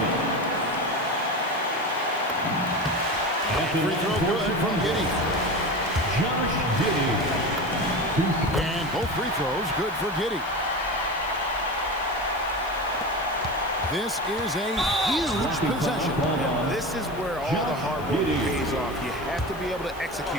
Free throw good from Giddey. Josh Giddey. And both free throws good for Giddey. This is a huge possession. And this is where all the hard work pays off. You have to be able to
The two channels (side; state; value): left; noise; hiss, 22 dB below the sound